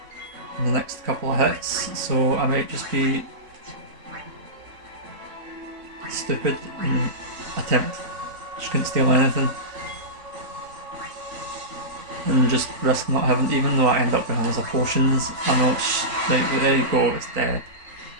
in the next couple of hits, so I might just be stupid and attempt. She couldn't steal anything. And just risk not having, even though I end up with loads of potions, I know it's like, there you go, it's dead.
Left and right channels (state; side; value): late; left; 3.9 ms